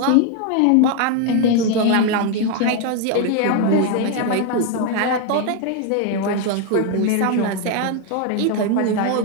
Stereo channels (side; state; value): both; different; correlation 0.01